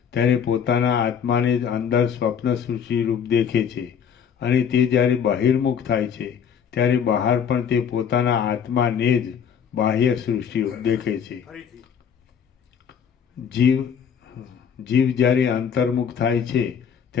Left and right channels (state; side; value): quieter; right; 7.6 dB